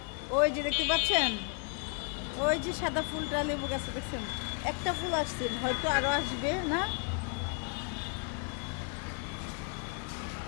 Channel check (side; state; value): right; quieter; 38.6 dB